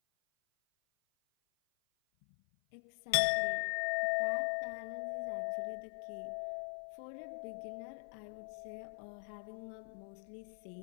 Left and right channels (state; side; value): silent; right; 50 dB below the other